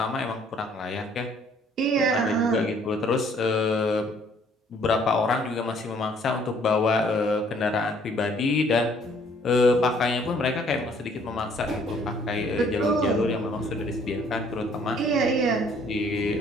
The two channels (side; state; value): both; normal; correlation 0.61